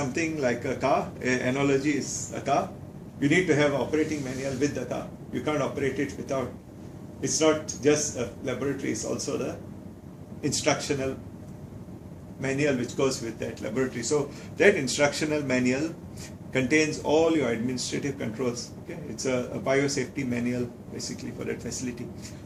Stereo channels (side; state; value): both; identical; correlation 1.00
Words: like a car, an analogy is a car. You need to have an operating manual with the car. You can't operate it without. It's not just a laboratory, it's also the instructional manual which goes with that laboratory. So that instructional manual contains all your administrative controls. Okay? It's a biosafety manual basically for that facility.